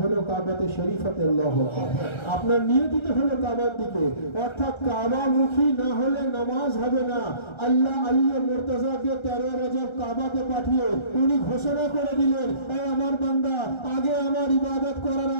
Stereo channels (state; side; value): late; right; 1.3 ms